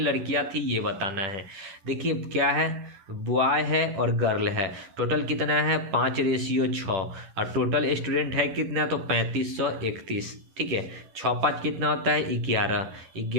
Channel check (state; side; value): late; left; 10 ms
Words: थी ये बताना है। देखिए क्या है, बॉय है और गर्ल है, टोटल कितना है 5:6 और टोटल स्टूडेंट है कितना, तो 3531, ठीक है। 6 5 कितना होता है 11,